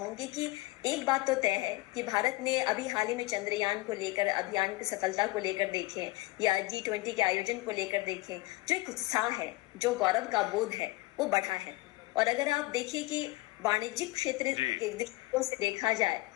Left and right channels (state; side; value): quieter; right; 20.5 dB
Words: कि एक बात तो तय है कि भारत ने अभी हाल ही में चंद्रयान को लेकर अभियान की सफलता को लेकर देखें या G20 के आयोजन को लेकर देखें, जो एक उत्साह है, जो गौरव का बोध है वो बढ़ा है। और अगर आप देखिए कि वाणिज्यिक क्षेत्र के दृष्टिकोण से देखा जाए